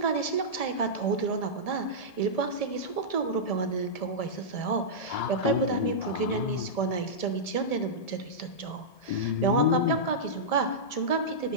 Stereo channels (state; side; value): late; right; 1.7 ms